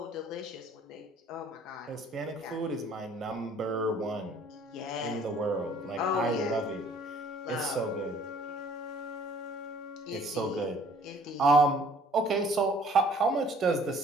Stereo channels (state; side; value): normal; both; correlation 0.56